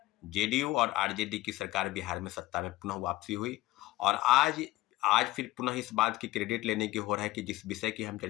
जेडीयू और आरजेडी की सरकार बिहार में सत्ता में पुनः वापसी हुई। और आज आज फिर पुनः इस बात की क्रेडिट लेने की हो रहा है कि जिस विषय की हम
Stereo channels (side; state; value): right; quieter; 17.6 dB